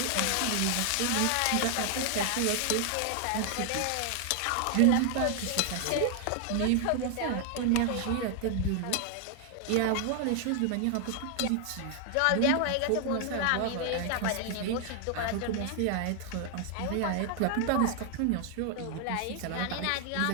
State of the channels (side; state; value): both; different; correlation 0.00